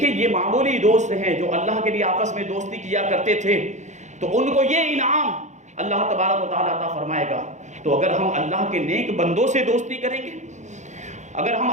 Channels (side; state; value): left; late; 0.34 ms